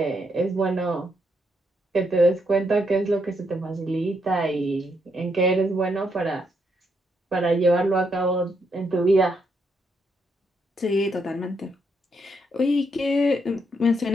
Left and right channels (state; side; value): normal; both; correlation 0.77